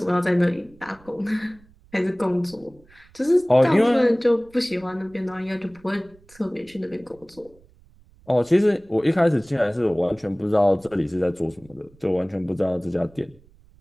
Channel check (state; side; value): noise; right; rumble, 28 dB below the sound